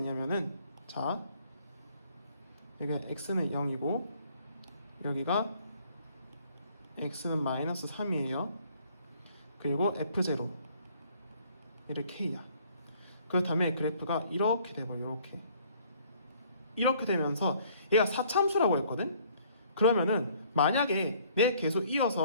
자 여기 x는 0이고 여기가 x는 마이너스 3이에요. 그리고 f0 얘를 k야. 그렇다면 그래프가 이렇게 돼버려. 이렇게 되면서 얘가 4참수라고 했거든. 그러면은 만약에 내 계속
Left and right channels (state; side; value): inverted; both; correlation -0.60